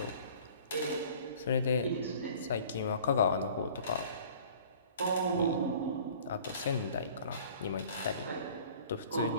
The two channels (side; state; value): both; inverted; correlation -0.49